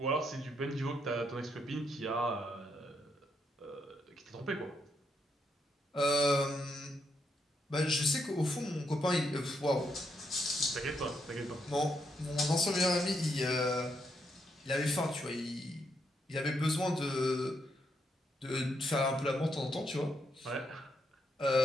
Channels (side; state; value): both; normal; correlation 0.79